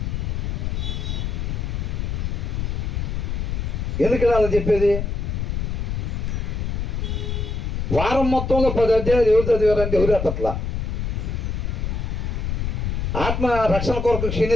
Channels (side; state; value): left; noise; rumble, 1 dB below the sound